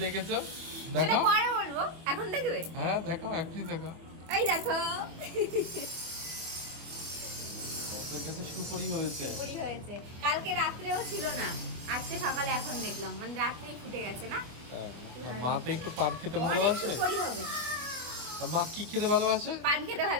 দেখেছো? সেটা দেখো। পরে বলবো, এখন দেখবে। হ্যাঁ দেখো, এখনই দেখো। এই দেখো তোর কাছে সুপরি হয়েছে। পুরি হয়েছে। কালকে রাত্রেও ছিল না, আজকে সকালে এখন দেখলাম, মানে রাত্রেই ফুটে গেছে না। হ্যাঁ, মা তো একটু পান খেতে অনেক ভালোবাসে। সুপুরি হবে। আর মা কি খেতে ভালোবাসে? পান খেতে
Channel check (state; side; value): late; left; 24 ms